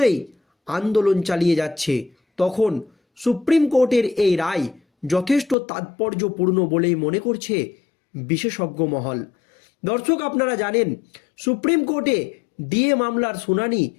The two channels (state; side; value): drops out; right; at 5.6 s